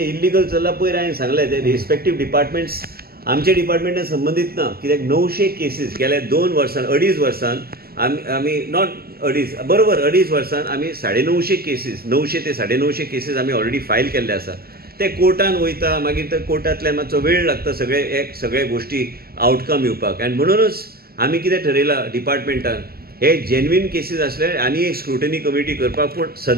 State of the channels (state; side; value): late; left; 0.45 ms